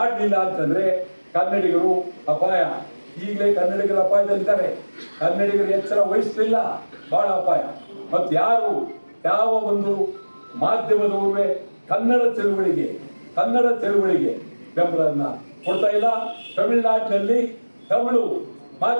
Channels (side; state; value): both; inverted; correlation -1.00